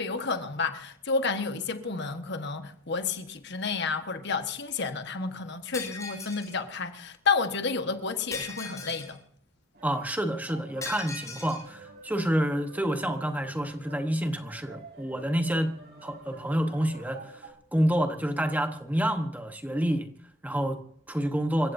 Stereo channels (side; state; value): both; normal; correlation 0.57